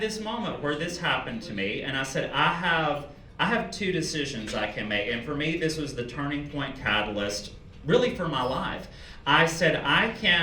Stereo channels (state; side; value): identical; both; correlation 1.00